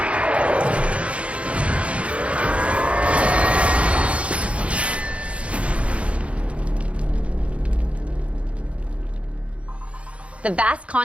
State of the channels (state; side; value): late; left; 0.062 ms